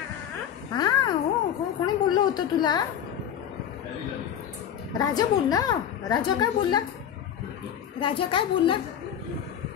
हा हो हो. कोणी बोललं होतं तुला? राजा बोलला. राजा काय बोलला? राजा काय बोलला?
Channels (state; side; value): quieter; right; 9.4 dB